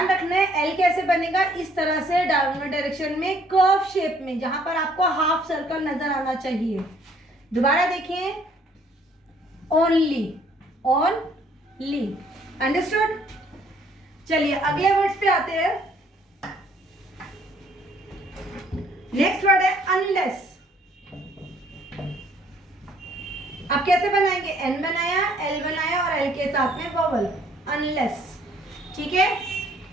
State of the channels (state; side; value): normal; both; correlation 0.62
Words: रखना है एल कैसे बनेगा, इस तरह से डाउनवर्ड डायरेक्शन में, कर्व शेप में, जहां पर आपको हाफ सर्कल नजर आना चाहिए। दोबारा देखिए, ओनली, ओनली, अंडरस्टूड? चलिए अगले वर्ड्स पे आते हैं। नेक्स्ट वर्ड है अनलेस। अब कैसे बनाएंगे? एन बनाया, एल बनाया और एल के साथ में वोवल, अनलेस। ठीक है।